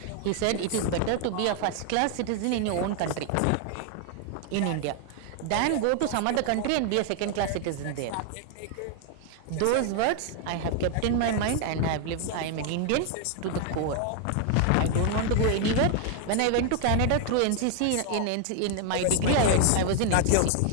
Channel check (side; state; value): both; different; correlation 0.00